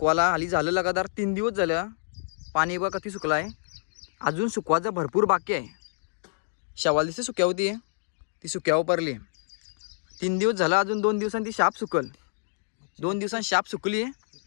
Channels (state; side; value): silent; right; digital silence